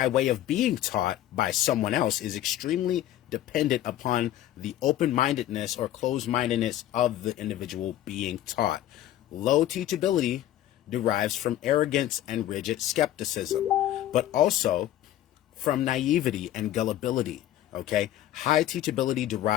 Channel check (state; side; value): quieter; right; 13.0 dB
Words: way of being taught by someone else, is extremely dependent upon the open-mindedness or closed-mindedness of the individual being taught. Low teachability derives from arrogance and rigid skepticism, but also from naivety and gullibility. Okay, high teachability